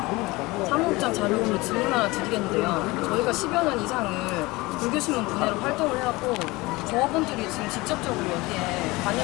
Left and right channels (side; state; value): right; quieter; 22.0 dB